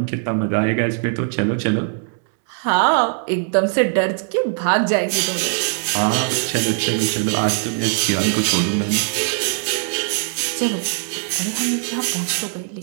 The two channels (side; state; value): left; silent; 58 dB below the other